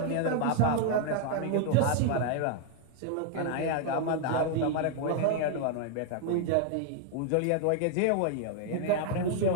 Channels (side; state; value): both; different; correlation 0.00